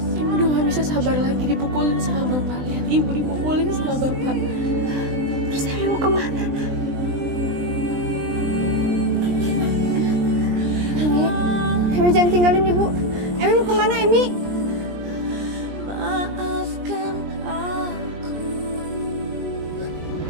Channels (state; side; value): late; left; 20 ms